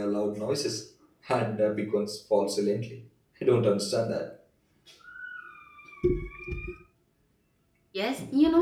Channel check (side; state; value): both; identical; correlation 1.00